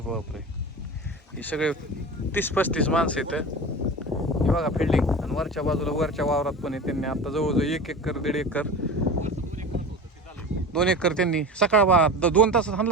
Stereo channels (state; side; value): normal; both; correlation 0.32